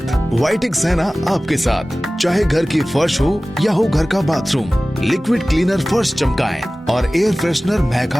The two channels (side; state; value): both; normal; correlation 0.97